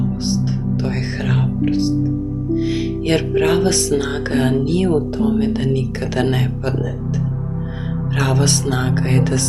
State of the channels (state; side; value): identical; both; correlation 1.00